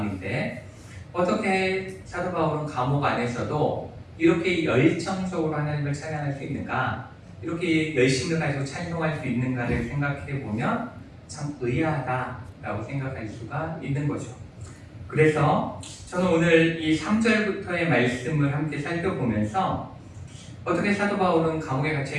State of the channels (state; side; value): identical; both; correlation 1.00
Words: 어떻게 사도 바울은 감옥 안에서도 이렇게 열정적으로 하나님을 찬양할 수 있는가 이렇게 열심을 가지고 찬송할 수 있는가를 생각해 보면 참 의아하다라고 생각할 수가 있는 거죠. 그래서 저는 오늘 이 3절부터의 말씀을 함께 살펴보면서 어떻게 사도 바울은 감옥에